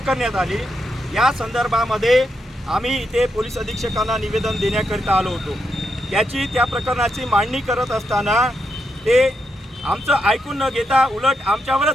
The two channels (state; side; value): normal; both; correlation 0.82